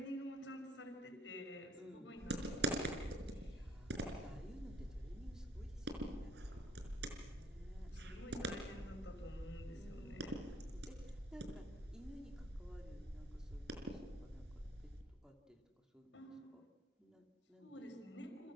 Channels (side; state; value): both; normal; correlation 0.62